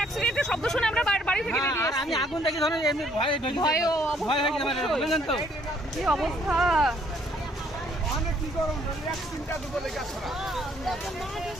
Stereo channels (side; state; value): both; normal; correlation 0.65